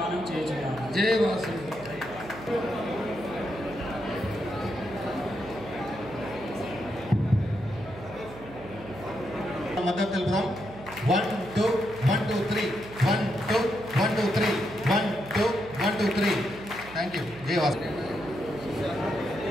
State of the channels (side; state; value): right; noise; hum, 17 dB below the sound